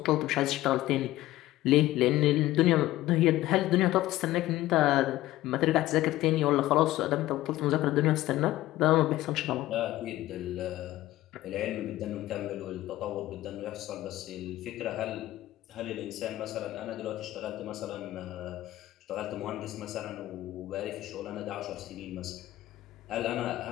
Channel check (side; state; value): right; quieter; 15.9 dB